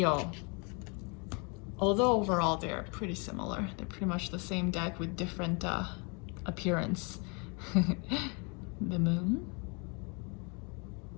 Although overall they're pretty similar. They're pretty much the same deck with different appearance. The Moon.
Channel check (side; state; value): right; quieter; 32.9 dB